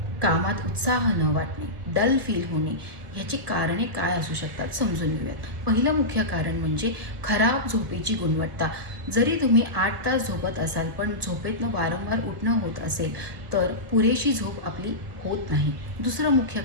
कामात उत्साह न वाटणे, डल फील होणे याची कारणे काय असू शकतात समजून घेऊयात. पहिलं मुख्य कारण म्हणजे खराब झोपेची गुणवत्ता. जरी तुम्ही 8 तास झोपत असाल पण झोपेतनं वारंवार उठणं होत असेल तर पुरेशी झोप आपली होत नाही. दुसरं मुख्य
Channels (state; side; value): late; left; 1.7 ms